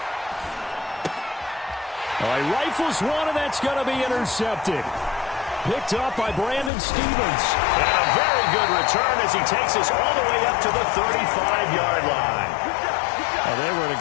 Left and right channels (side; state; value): right; drops out; at 6.7 s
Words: He rifles one, and that's going to be intercepted. Picked up by Brandon Stevens. And a very good return as he takes us all the way up to the 35-yard line. They were in a